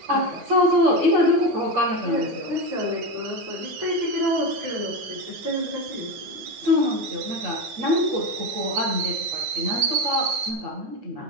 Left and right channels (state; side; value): late; left; 9.4 ms